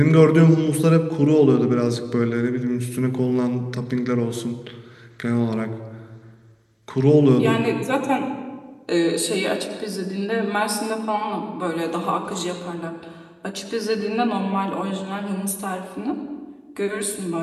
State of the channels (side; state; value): both; identical; correlation 1.00